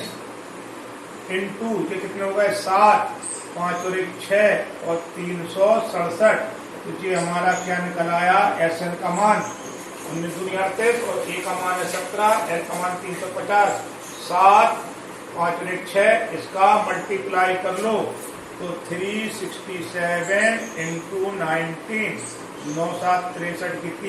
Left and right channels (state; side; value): identical; both; correlation 1.00